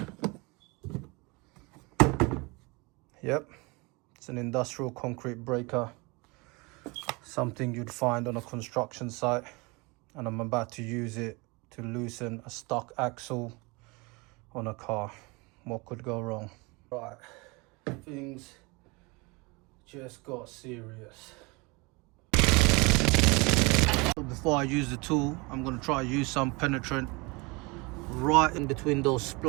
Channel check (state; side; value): quieter; left; 26.8 dB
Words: Yep, it's an industrial concrete breaker, something you'd find on a construction site, and I'm about to use it to loosen a stock axle on a car. What could go wrong? Right, things just got serious. Before I use the tool, I'm going to try to use some penetrant right in between those